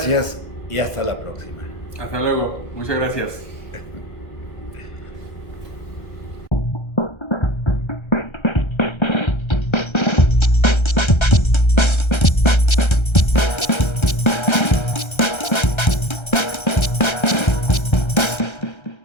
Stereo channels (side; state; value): right; late; 1.3 ms